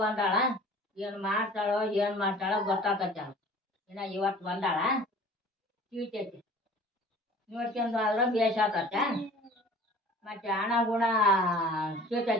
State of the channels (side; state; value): both; normal; correlation 0.46